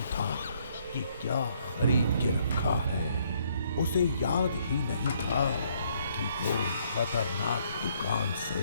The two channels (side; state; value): both; inverted; correlation -0.68